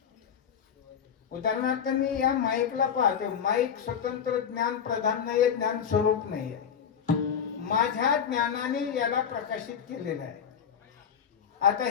उदाहरणार्थ मी या माईकला पाहतो, माईक स्वतंत्र ज्ञान प्रधान नाहीये, ज्ञान स्वरूप नाहीये. माझ्या ज्ञानाने याला प्रकाशित केलेलं आहे. आता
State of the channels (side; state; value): right; quieter; 7.8 dB